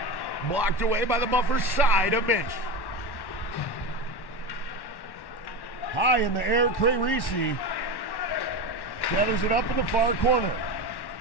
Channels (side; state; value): right; late; 1.1 ms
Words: blocked away by the buffer side of Minch. High in the air, Cray Reese gathers it up in the far corner.